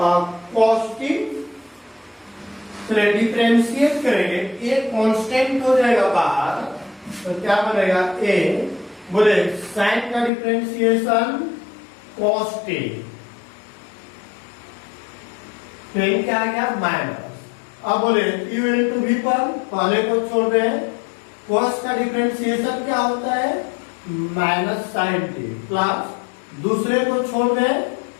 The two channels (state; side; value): drops out; right; at 10.3 s